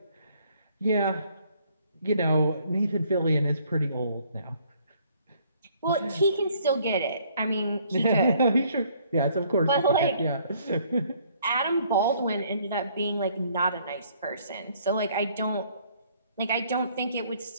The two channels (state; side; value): inverted; both; correlation -0.63